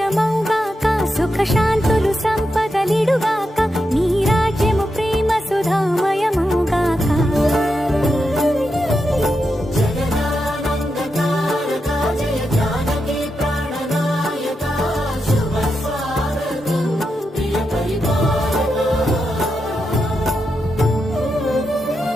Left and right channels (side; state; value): both; normal; correlation 0.86